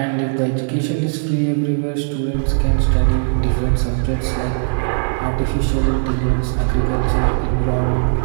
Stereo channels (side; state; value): left; silent; digital silence